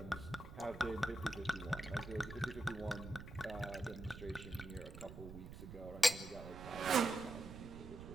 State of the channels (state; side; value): noise; right; rumble, 12 dB below the sound